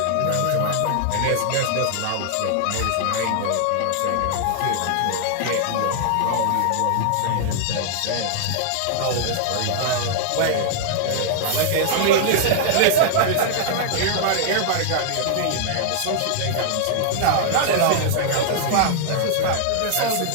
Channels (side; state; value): both; different; correlation -0.01